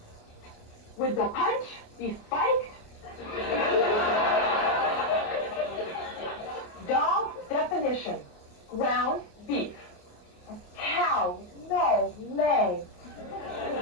would the punch be spiked? Dog definition. Ground beef. A cow with no legs.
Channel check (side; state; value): right; late; 27 ms